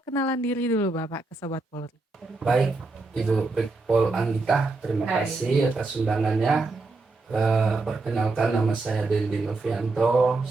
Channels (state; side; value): quieter; left; 3.5 dB